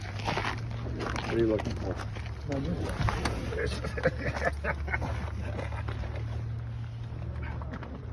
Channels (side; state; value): both; identical; correlation 1.00